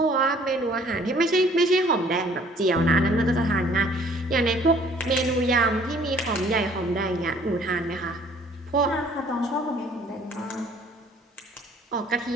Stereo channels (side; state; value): both; normal; correlation 0.57